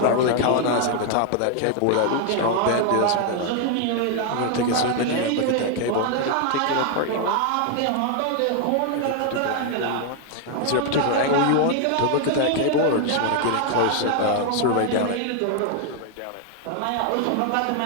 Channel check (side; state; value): both; different; correlation 0.00